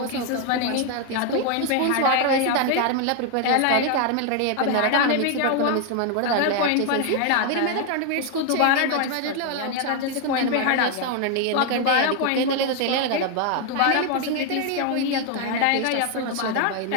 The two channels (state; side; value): different; both; correlation 0.01